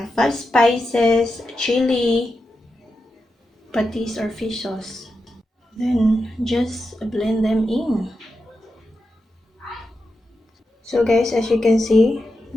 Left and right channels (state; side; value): normal; both; correlation 0.89